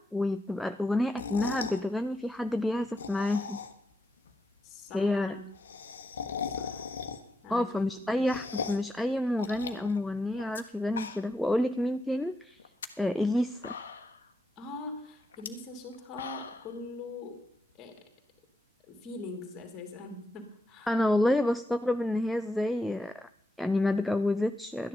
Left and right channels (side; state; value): both; normal; correlation 0.84